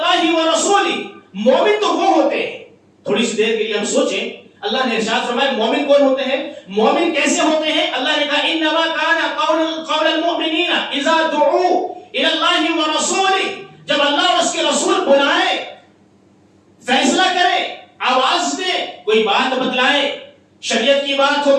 ورسولہ، مومن تو وہ ہوتے ہیں، تھوڑی سی دیر کے لیے ہم سوچیں، اللہ نے ارشاد فرمایا مومن کون ہوتے ہیں، مومن کیسے ہوتے ہیں؟ اللہ نے کہا انما کان قول المؤمنین اذا دعوا الی اللہ ورسولہ، جب اللہ اور اس کے رسول بلائے، فیصلہ کرے، آواز دے، کوئی بات بتلائے، شریعت کی بات ہو،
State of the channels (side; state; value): both; identical; correlation 1.00